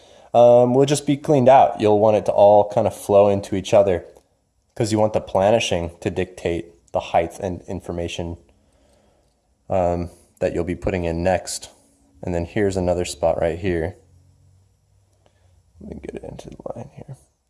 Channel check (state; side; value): identical; both; correlation 1.00